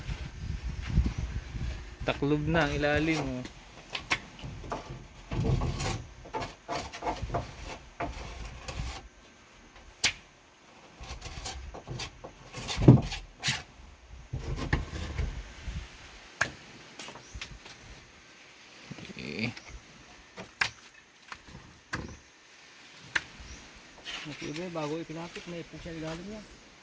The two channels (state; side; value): identical; both; correlation 1.00